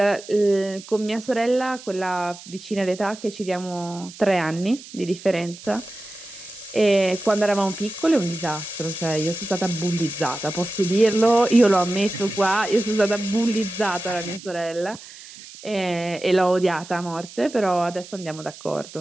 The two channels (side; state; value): right; noise; hiss, 17 dB below the sound